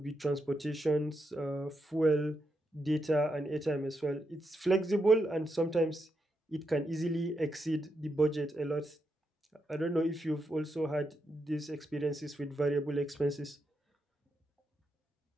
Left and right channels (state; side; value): normal; both; correlation 0.83